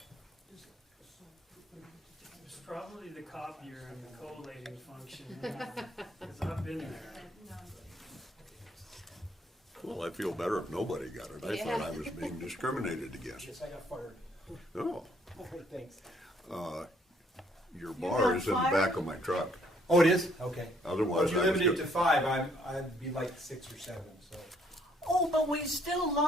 It's probably the copier and the collating function, because I've been there. Well, I feel better if nobody got it. I Yeah. thought I was being discriminated against. Yes, I got fired. Oh, All right, thanks. your got bar is in the fired? back of my truck. Oh, it is? Okay. Otherwise, If you I was limit it good. to 5, I'd be like 6 or 7, so. Oh, but we still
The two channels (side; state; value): both; normal; correlation 0.65